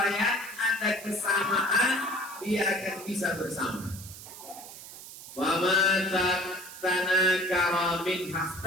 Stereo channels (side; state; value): right; noise; hiss, 14 dB below the sound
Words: ada kesamaan, dia akan bisa bersama. Fama tanakara min